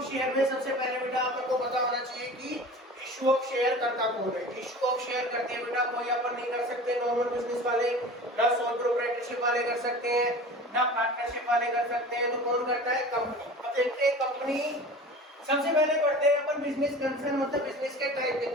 शेयर में सबसे पहले बेटा अपन को पता होना चाहिए कि इश्यू ऑफ शेयर करता कौन है। इश्यू ऑफ शेयर करते हैं बेटा कोई अपन नहीं कर सकते, नॉर्मल बिजनेस वाले, ना सोल प्रोप्राइटरशिप वाले कर सकते हैं, ना पार्टनरशिप वाले कर सकते हैं। तो कौन करता है? कंपनी। अब देखते हैं कंपनी। सबसे पहले पढ़ते हैं अपन बिजनेस कंसर्न, मतलब बिजनेस के टाइप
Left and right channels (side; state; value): both; normal; correlation 0.38